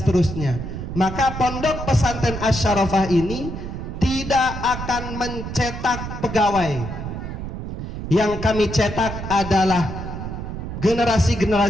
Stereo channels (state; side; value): noise; right; rumble, 7 dB below the sound